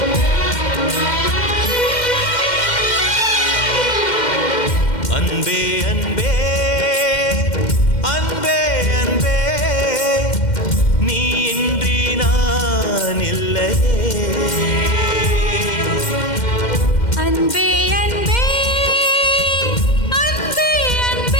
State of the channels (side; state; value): right; late; 2.1 ms